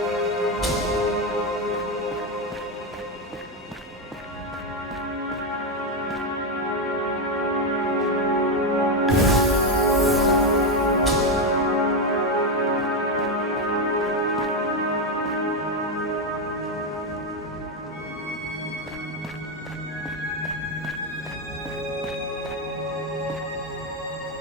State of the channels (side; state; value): both; normal; correlation 0.08